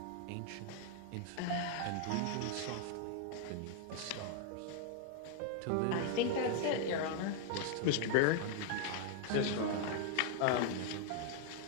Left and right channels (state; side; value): different; both; correlation 0.00